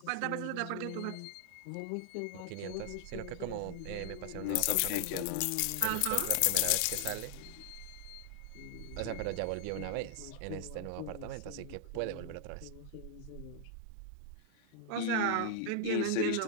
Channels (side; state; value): both; different; correlation 0.00